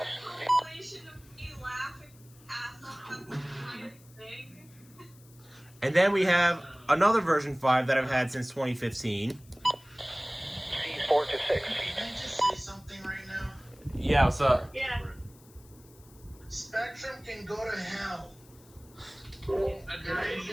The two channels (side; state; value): left; noise; hiss, 26 dB below the sound